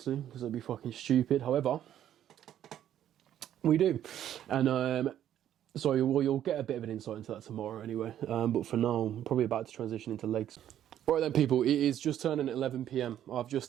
because it'd be fucking stupid. However, we do. And so you'll get a bit of an insight into that tomorrow anyway. But for now, I'm probably about to transition into legs. Right then, people, it is just turning 11 p.m. I've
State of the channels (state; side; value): quieter; left; 11.0 dB